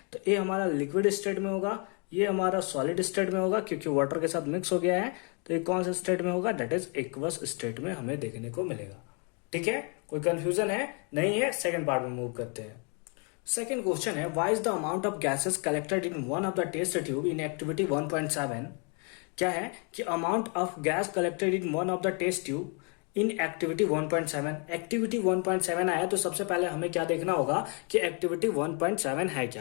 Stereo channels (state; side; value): quieter; right; 36.6 dB